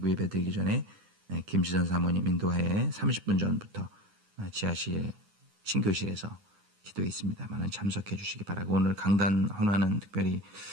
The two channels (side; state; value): left; late; 9.7 ms